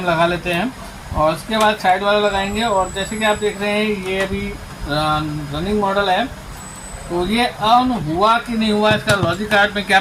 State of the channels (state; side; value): identical; both; correlation 1.00